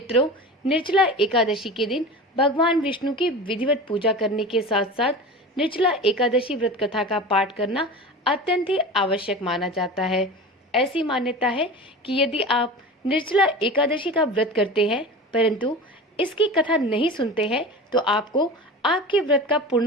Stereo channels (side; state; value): both; normal; correlation 0.32